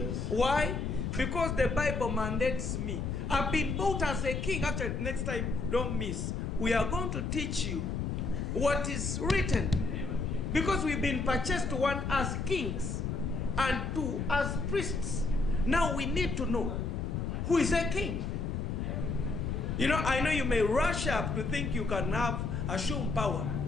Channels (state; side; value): noise; left; rumble, 2 dB below the sound